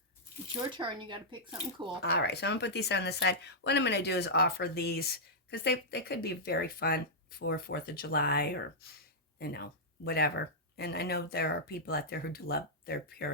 It's your turn. You got to pick something cool. All right, so I'm gonna put these on the side. What I'm gonna do is offer these because they could be very fun for 4th of July or, you know, whatever. And I know there are people out there who do love their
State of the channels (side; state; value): both; normal; correlation -0.09